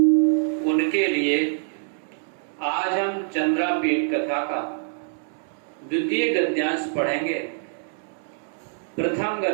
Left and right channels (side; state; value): left; silent; digital silence